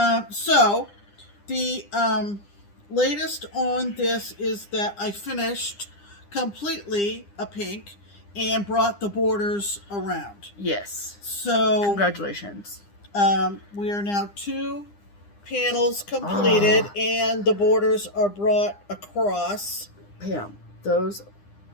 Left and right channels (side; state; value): right; late; 9.9 ms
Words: So, the latest on this is that I finished completely a pink and brought the borders around. Yes. So, Congratulations. we are now 2 panels completed, and the borders are brought across. Pam,